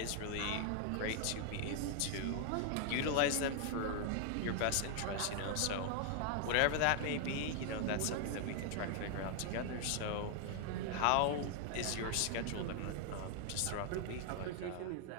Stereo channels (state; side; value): different; both; correlation 0.00